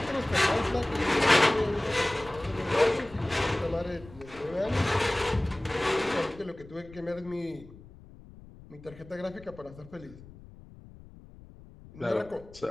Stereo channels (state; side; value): noise; left; rumble, 20 dB below the sound